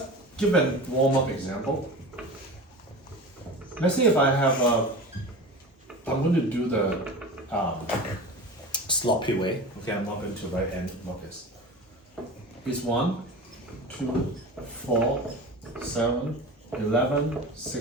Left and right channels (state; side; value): normal; both; correlation 0.32